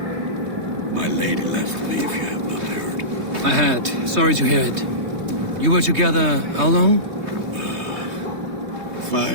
My lady left me, if you have not heard. I had. Sorry to hear it. You were together how long?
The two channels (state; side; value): late; left; 3.2 ms